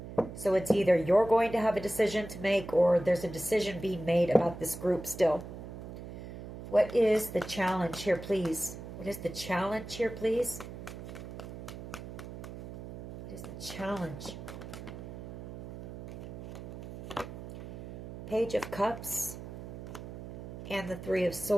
So it's either you're going to have a decision to make, or there's a decision being made about this group still. What is the challenge here, please? What is the challenge here, please? What is the challenge? Page of Cups and the Three of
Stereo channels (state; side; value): noise; right; hum, 11 dB below the sound